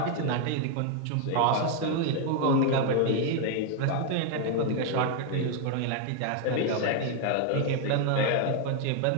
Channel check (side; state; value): both; different; correlation 0.00